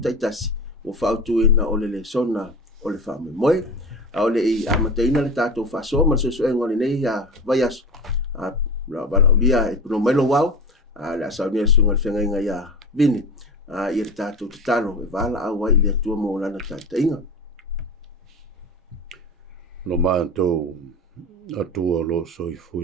ua faautuuina o le sona o le faamoemoe o le i amataina le tatou faasoa ma le soasoaega o lenei ia vaiaso valaulia e puno mai lo wau le asaunia le suga le fegaiga ia vini ia le tatou tatalo e valaau ai i le atua mo lana taʻitaʻiga lo mātou atua lo soifu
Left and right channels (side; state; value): both; normal; correlation 0.29